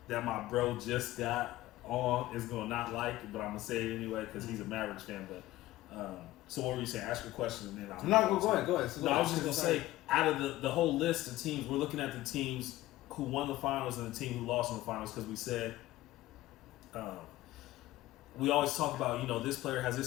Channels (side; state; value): right; quieter; 16.4 dB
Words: my bro just got on is gonna not like it, but I'm gonna say it anyway because he's a Mavericks fan. But so what were you saying? Ask your question and then I'll. No, go ahead. So I was just gonna say, out of the whole list of teams, we're looking at the teams who won the finals and the team who lost in the finals, because we said we always talk about, this player has